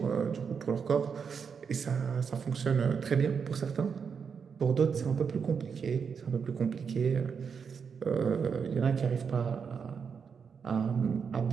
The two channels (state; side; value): quieter; left; 6.3 dB